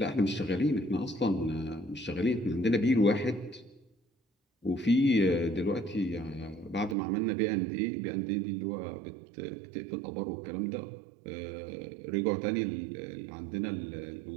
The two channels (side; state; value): left; drops out; at 7.0 s